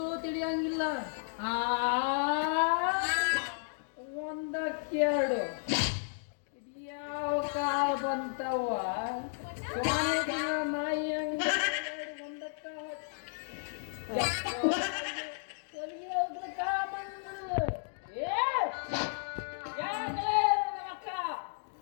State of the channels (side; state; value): right; silent; digital silence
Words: ತಿಳಿಯಂಗಿಲ್ಲ. ಒಂದಕ್ಕೆರಡು ಇದ್ಯಾವ ಕಾಲ ಬಂತವ ನಾಯಿ ಹಂಗ ಒಂದಕ್ಕ